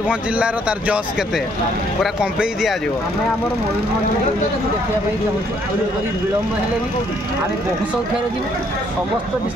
जिलार तार जस केते पूरा कंपेई दि जाव विलम्ब हेले भी आम बहु संख्यार जी समस्त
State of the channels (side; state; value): both; normal; correlation 0.67